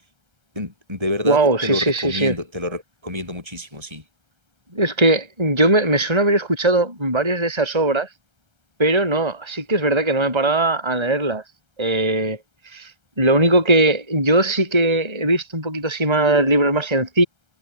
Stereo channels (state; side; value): late; left; 1.3 ms